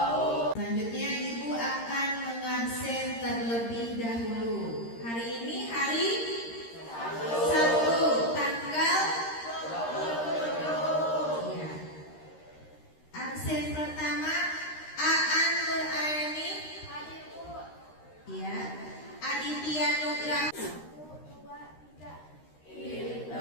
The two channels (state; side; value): late; right; 13 ms